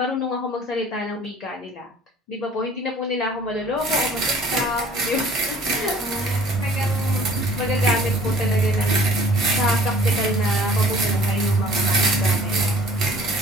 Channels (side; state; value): both; normal; correlation 0.52